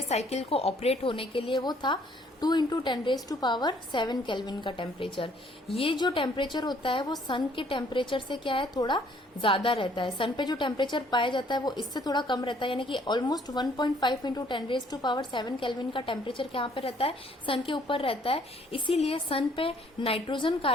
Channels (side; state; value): both; normal; correlation 0.62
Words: साइकिल को ऑपरेट होने के लिए, वो था 2 इंटू 10⁻⁷ केल्विन का टेम्परेचर। ये जो टेम्परेचर होता है वो सन के टेम्परेचर से क्या है, थोड़ा ज्यादा रहता है। सन पे जो टेम्परेचर पाया जाता है वो इससे थोड़ा कम रहता है, यानी कि ऑलमोस्ट 1.5 इंटू 10⁻⁷ केल्विन का टेम्परेचर यहाँ पे रहता है, सन के ऊपर रहता है। इसीलिए सन पे नाइट्रोजन